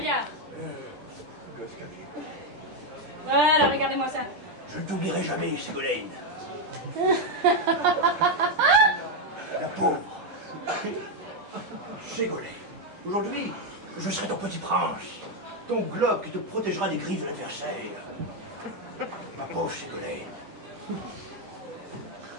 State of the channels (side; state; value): left; late; 10 ms